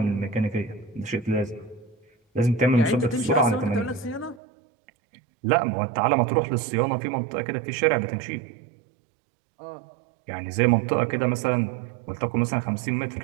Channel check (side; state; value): left; drops out; at 4.4 s